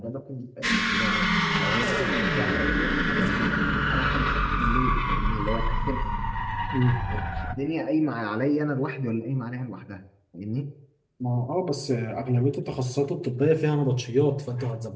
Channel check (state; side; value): identical; both; correlation 1.00